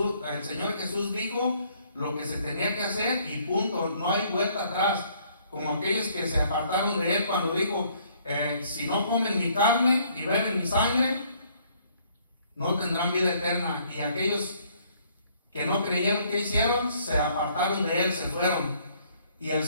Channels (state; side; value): inverted; both; correlation -0.64